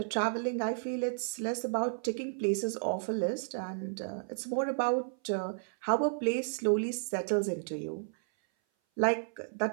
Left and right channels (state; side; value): silent; left; 56 dB below the other